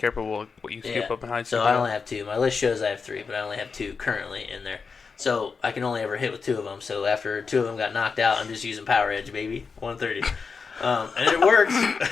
with what you scoop up behind. So I only have 2. My list shows I have 3, but I only have 2 currently in there. So I can only ever hit with 2 of them. So after 2 of them got knocked out, I'm just using Power Edge, baby. 130. And it works.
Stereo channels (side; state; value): right; quieter; 5.1 dB